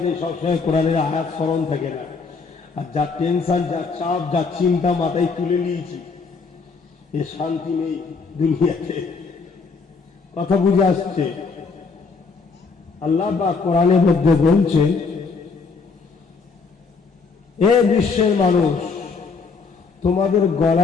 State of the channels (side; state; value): right; quieter; 4.7 dB